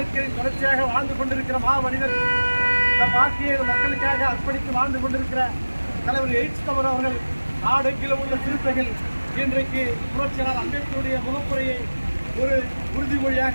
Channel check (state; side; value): inverted; both; correlation -1.00